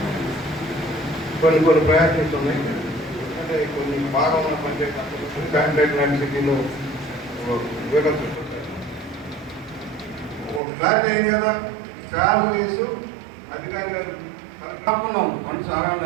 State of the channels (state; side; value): drops out; left; at 10.6 s